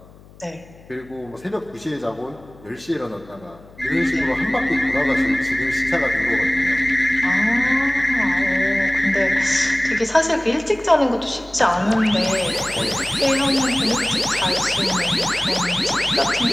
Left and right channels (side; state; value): left; noise; hum, 23 dB below the sound